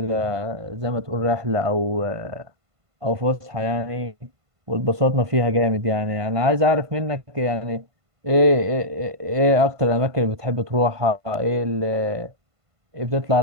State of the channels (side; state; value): left; late; 1.5 ms